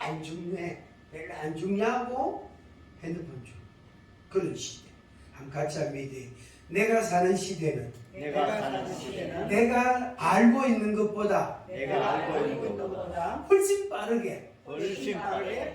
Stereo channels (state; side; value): identical; both; correlation 1.00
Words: 중요해. 별로 안 중요하고 핸드폰 중. 그런 시대. 한번 같이 한번 얘기해. 내가 사는 시대는 내가 알고 있는 것보다 훨씬 빠르게